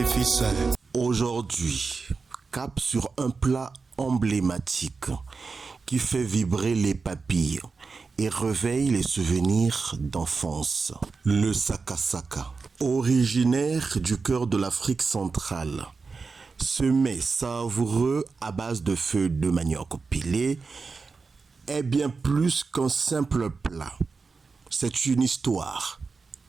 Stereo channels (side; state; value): left; quieter; 4.5 dB